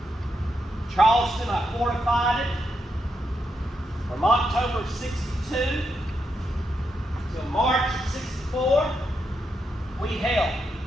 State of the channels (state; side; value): normal; both; correlation 0.83